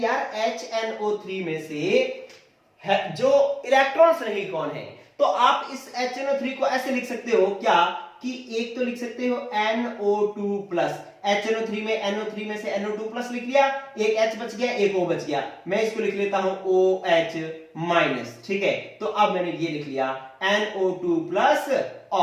यार HNO3 में से जो इलेक्ट्रॉन्स नहीं कौन है, तो आप इस HNO3 को ऐसे लिख सकते हो क्या कि एक तो लिख सकते हो NO2 प्लस, HNO3 में NO3 में से NO2 प्लस लिख लिया, एक H बच गया, एक O बच गया, मैं इसको लिख लेता हूं OH माइनस, ठीक है। तो अब मैंने ये लिख लिया NO2 प्लस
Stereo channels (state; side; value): identical; both; correlation 1.00